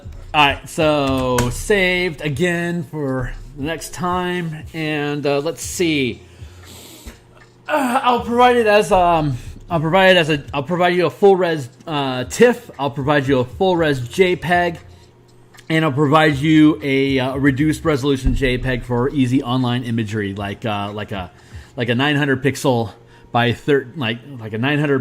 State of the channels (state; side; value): identical; both; correlation 1.00